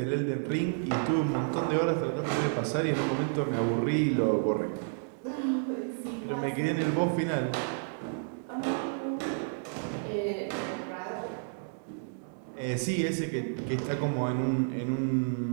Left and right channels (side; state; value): left; silent; digital silence